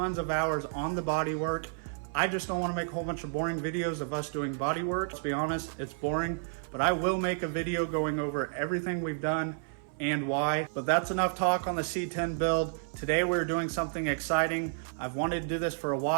of hours on the body work. I just don't want to make a whole bunch of boring videos of us doing body work. Let's be honest, it's boring, but I will make a video going over everything we've done and why. But that's enough talk on the C10 build. Today we're doing something exciting. I've wanted to do this for a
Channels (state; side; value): silent; left; 57 dB below the other